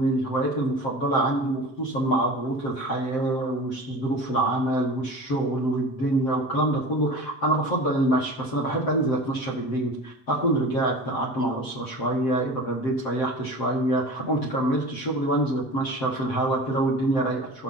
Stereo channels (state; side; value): late; right; 7.7 ms